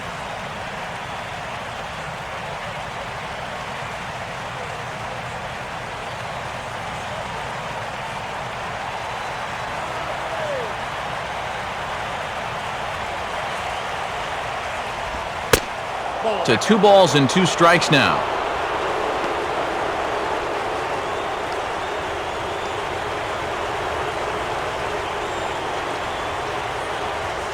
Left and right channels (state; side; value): identical; both; correlation 1.00